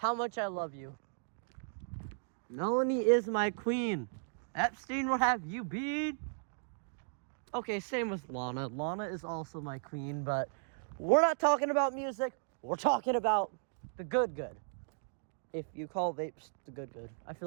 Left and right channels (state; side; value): silent; left; digital silence